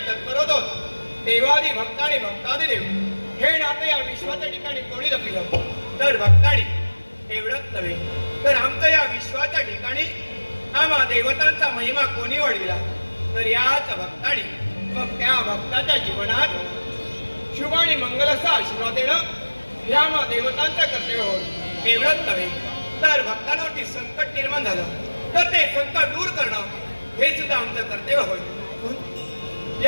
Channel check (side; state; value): both; inverted; correlation -1.00